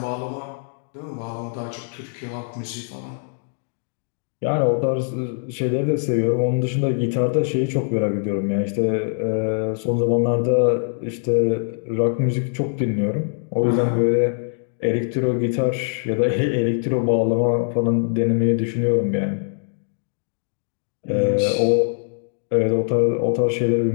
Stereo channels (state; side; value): silent; right; digital silence